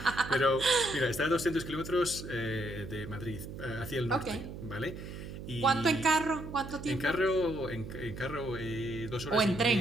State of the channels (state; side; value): noise; right; hum, 10 dB below the sound